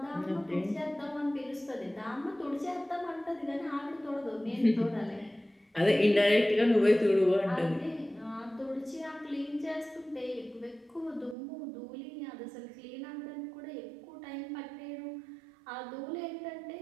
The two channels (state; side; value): drops out; left; at 11.4 s